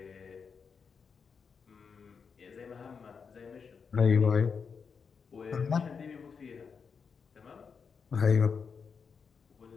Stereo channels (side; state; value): right; quieter; 5.9 dB